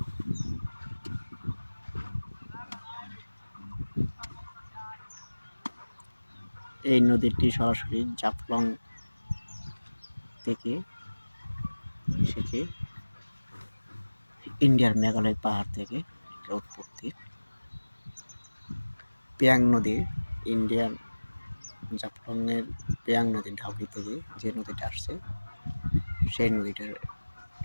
এই নদীটি সরাসরি জাফলং থেকে এসেছে, ইন্ডিয়ার মেঘালয় পাহাড় থেকে এর উৎপত্তি। পেয়াং নদী, ইন্ডিয়ার জাফলংয়ের পেয়াং নদীর ঢাউকি থেকে যে নদীটা আসছে সেই নদীটার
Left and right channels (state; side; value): inverted; both; correlation -1.00